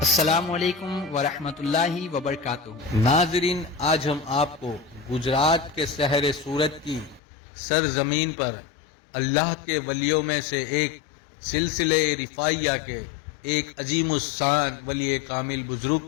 علیکم ورحمۃ اللہ وبرکاتہ۔ ناظرین، آج ہم آپ کو گجرات کے شہر سورت کی سرزمین پر اللہ کے ولیوں میں سے ایک سلسلہ رفاعیہ کے ایک عظیم الشان ولی کامل بزرگ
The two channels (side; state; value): right; drops out; at 7.2 s